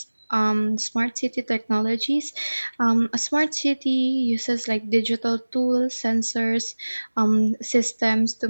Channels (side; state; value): both; inverted; correlation -1.00